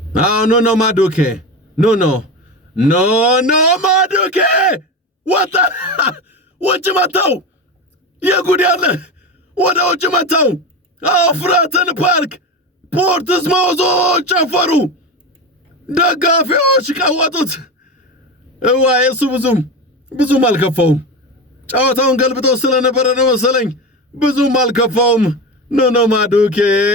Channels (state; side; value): normal; both; correlation 0.22